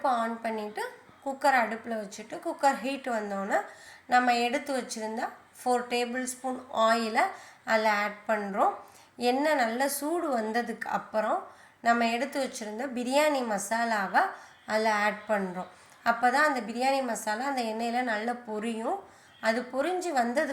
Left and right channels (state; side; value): identical; both; correlation 1.00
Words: ஆன் பண்ணிவிட்டு குக்கர் அடுப்பில் வச்சுட்டு குக்கர் ஹீட் வந்தோன்னே நம்ம எடுத்து வச்சுருந்தா 4 டேபிள் ஸ்பூன் ஆயிலை அதில் ஆட் பண்ணுறோம். எண்ணெய் நல்லா சூடு வந்ததுக்கு அப்புறம் நம்ம எடுத்து வச்சுருந்த பிரியாணி மசாலாவை அதில் ஆட் பண்ணுறோம். அப்போ தான் அந்த பிரியாணி மசாலா அந்த எண்ணெயில் நல்லா பொரியும். அது பொரிஞ்சு